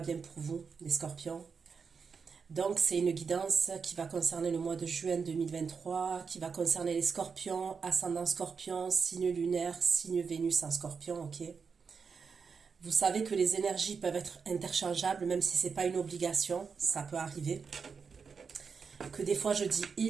pour vous, les scorpions. Donc c'est une guidance qui va concerner le mois de juin 2023, qui va concerner les scorpions, ascendant scorpion, signe lunaire, signe Vénus en scorpion, ok? Vous savez que les énergies peuvent être interchangeables, même si ce n'est pas une obligation, ça peut arriver. Que des fois je dis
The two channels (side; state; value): left; quieter; 5.6 dB